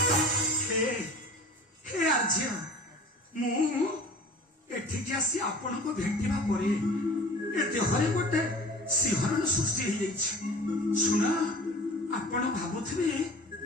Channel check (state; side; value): normal; both; correlation 0.42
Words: ଆସି ଆପଣଙ୍କୁ ଭେଟିବା ପରେ ଏ ଦେହରେ ଗୋଟେ ଶିହରଣ ସୃଷ୍ଟି ହେଇଯାଇଛି। ଶୁଣ, ଆପଣ ଭାବୁଥିବେ